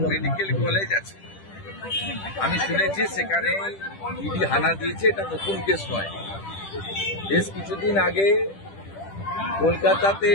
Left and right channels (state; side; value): late; right; 10 ms